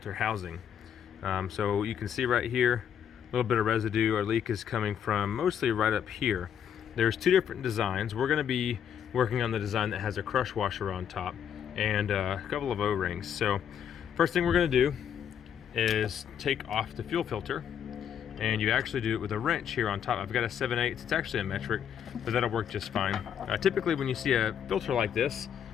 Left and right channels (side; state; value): right; quieter; 8.7 dB